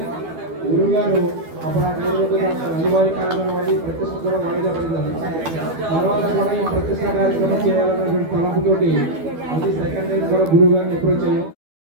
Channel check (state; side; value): late; left; 12 ms